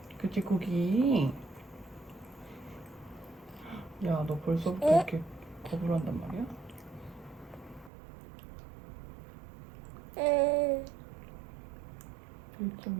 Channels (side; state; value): left; drops out; at 7.9 s